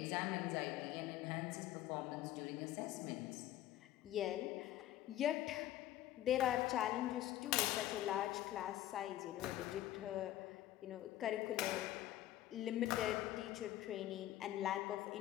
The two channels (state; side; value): quieter; right; 13.8 dB